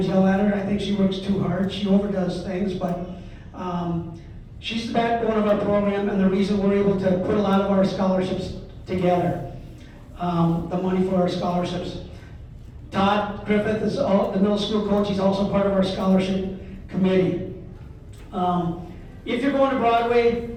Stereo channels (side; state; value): both; identical; correlation 1.00